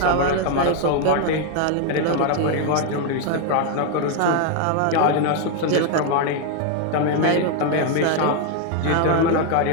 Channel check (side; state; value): both; different; correlation 0.01